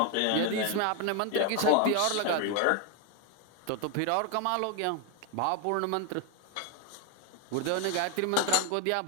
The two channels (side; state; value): both; different; correlation 0.01